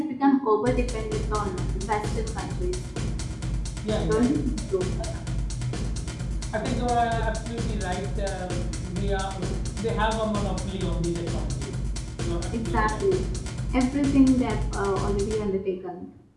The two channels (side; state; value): both; identical; correlation 1.00